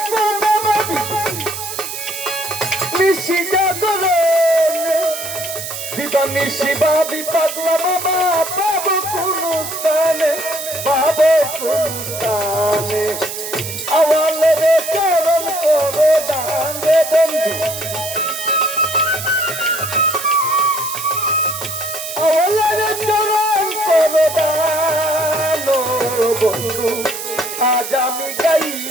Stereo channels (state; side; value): noise; right; hiss, 7 dB below the sound